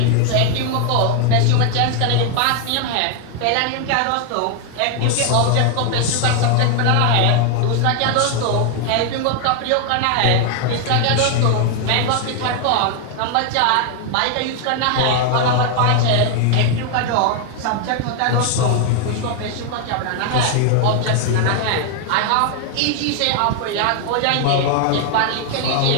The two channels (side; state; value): both; different; correlation 0.00